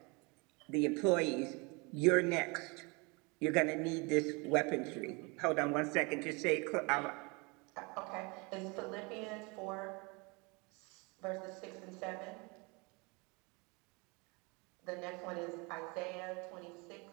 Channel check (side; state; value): left; quieter; 28.7 dB